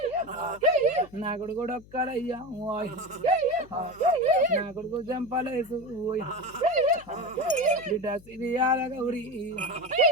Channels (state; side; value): noise; left; hum, 23 dB below the sound